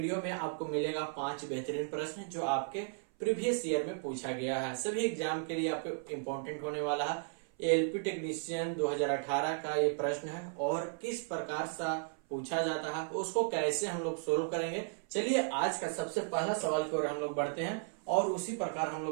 में आपको मिलेगा 5 बेहतरीन प्रश्न जो आपके प्रीवियस ईयर में पूछा गया है। सभी एग्जाम के लिए आपको इम्पोर्टेंट होने वाला है। एलपी टेक्नीशियन 2018 का ये प्रश्न है और किस प्रकार सा पूछा जाता है उसको कैसे हम लोग सोल्व करेंगे। चलिए आज का सबसे पहला सवाल की ओर हम लोग बढ़ते हैं और उसी प्रकार हम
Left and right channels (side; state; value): left; silent; 55 dB below the other